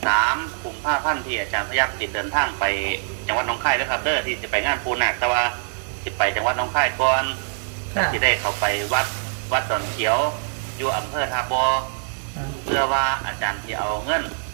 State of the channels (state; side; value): silent; left; digital silence